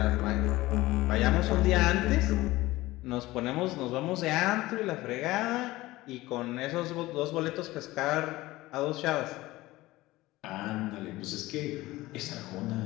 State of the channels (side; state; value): right; quieter; 18.5 dB